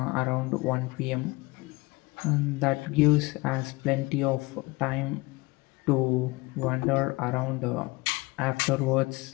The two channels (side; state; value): right; quieter; 23.6 dB